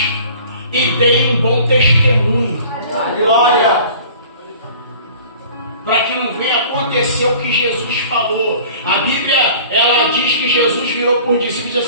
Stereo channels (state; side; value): inverted; both; correlation -0.46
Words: e deem um bom testemunho. Glória! Para que não venha acontecer o que Jesus falou. A Bíblia, ela diz que Jesus virou por discípulos e